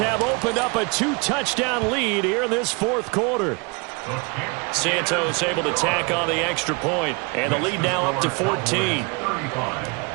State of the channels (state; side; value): quieter; left; 30.7 dB